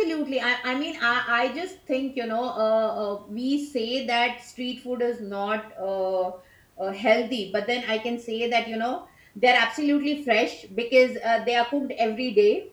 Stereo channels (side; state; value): both; identical; correlation 1.00